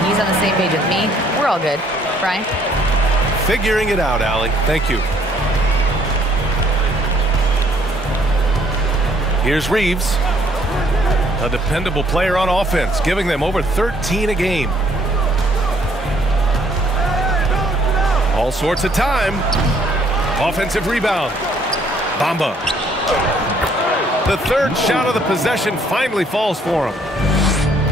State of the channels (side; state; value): both; normal; correlation 0.64